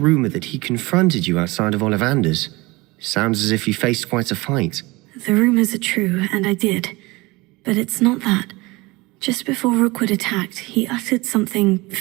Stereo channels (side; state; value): left; quieter; 22.7 dB